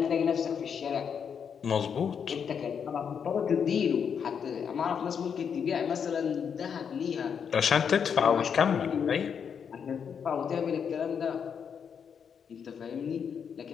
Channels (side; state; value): right; quieter; 7.1 dB